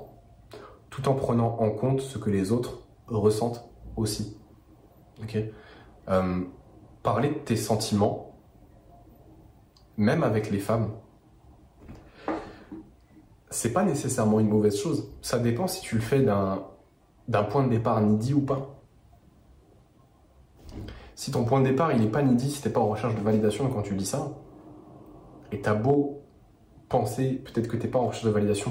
tout en prenant en compte ce que les autres ressentent aussi. Ok. Parler de tes sentiments, même avec les femmes, c'est pas nécessairement une mauvaise chose. Ça dépend si tu le fais d'un point de départ needy ou pas. Si ton point de départ il est pas needy, si t'es pas en recherche de validation quand tu dis ça, et t'as beau penser peut-être que t'es pas en recherche de validation,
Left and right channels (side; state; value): both; identical; correlation 1.00